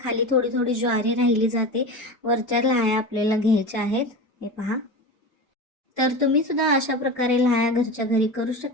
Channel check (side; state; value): both; normal; correlation 0.27